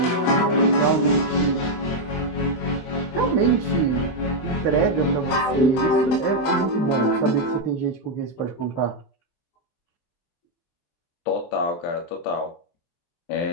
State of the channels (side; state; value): right; late; 23 ms